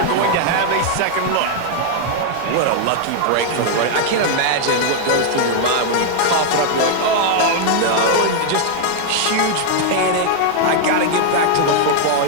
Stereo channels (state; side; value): different; both; correlation 0.00